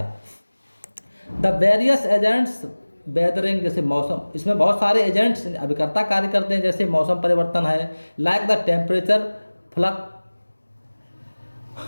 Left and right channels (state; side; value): inverted; both; correlation -1.00